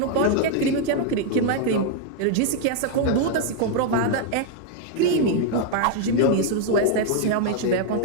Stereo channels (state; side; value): different; both; correlation 0.00